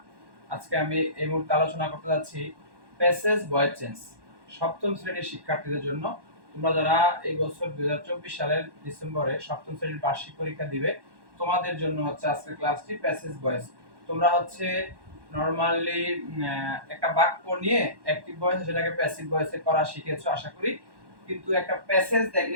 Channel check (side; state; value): left; late; 1.1 ms